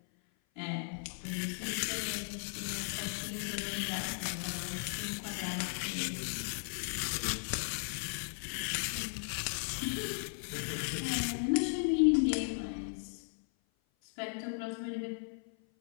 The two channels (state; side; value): silent; right; 53 dB below the other